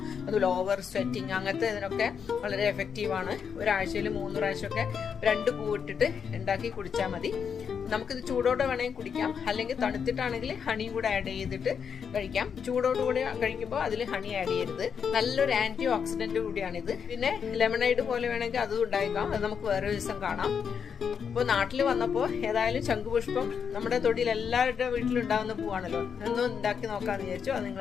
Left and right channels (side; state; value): right; quieter; 6.9 dB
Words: അതുപോലെ ഓവർ സ്വെറ്റിങ്, അങ്ങനത്തെ ഇതിനൊക്കെ വളരെ എഫക്റ്റീവ് ആണ്. ഒരാഴ്ചയിൽ 3 പ്രാവശ്യമൊക്കെ 2 പൂ ഇട്ടിട്ട് ഉണ്ടാക്കി കുടിച്ചാൽ മതി. നമുക്കിത് ചൂടോടെ വേണമെങ്കിൽ കുടിക്കാം, അല്ലെങ്കിൽ തണുത്തിട്ടാണെങ്കിൽ ഹണിയും കൂടെ ആഡ് ചെയ്തിട്ട് കഴിക്കാം. ചൂടോടുകൂടി കഴിക്കുമ്പോൾ അതിൽ ഹണി ആഡ് ചെയ്യരുത്. നല്ലൊരു ആന്റി ഓക്സിഡന്റ് കൂടിയാണിത്. പിന്നെ ലെമണൈഡ് പോലെ വേണമെങ്കിൽ അതും ഉണ്ടാക്കാം. അത് നമുക്ക് വേറെ ദിവസം കാണാം. അപ്പോൾ നാട്ടിൽ വന്നപ്പോൾ ഏതായാലും ശംഖുപുഷ്പം നമ്മുടെ തൊടിയിൽ എല്ലാവരുടെ വീട്ടിലുണ്ടാകുന്ന പൂവാണല്ലോ, ഒന്നും ഉണ്ടാക്കി നോക്കാമെന്ന് വിചാരിച്ചു. അത്